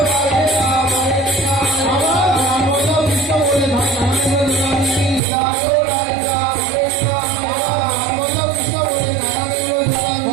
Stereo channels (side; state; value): left; drops out; at 5.2 s